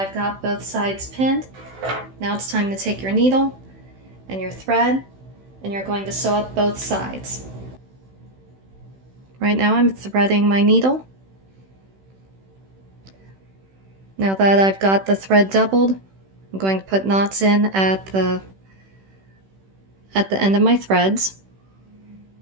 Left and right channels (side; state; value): left; late; 16 ms